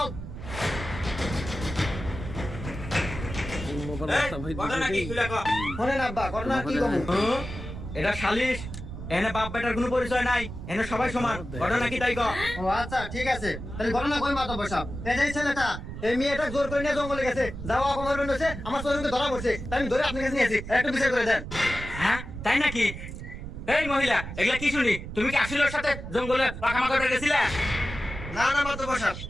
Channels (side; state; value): right; noise; rumble, 9 dB below the sound